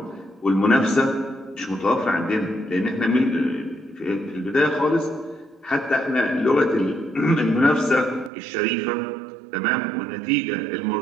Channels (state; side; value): drops out; left; at 8.3 s